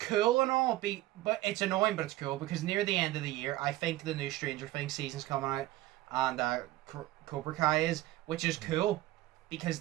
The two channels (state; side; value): quieter; left; 16.6 dB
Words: and all, but it's annoying, but it's cool, because near the end of the year, I think the new Stranger Things season's coming out, and Cobra Kai is, which is cool, because